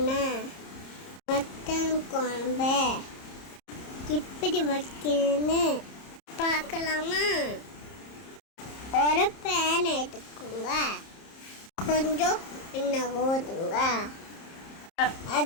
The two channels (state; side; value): late; right; 30 ms